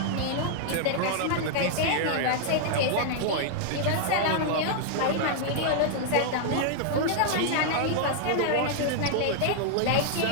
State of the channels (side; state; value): both; different; correlation -0.01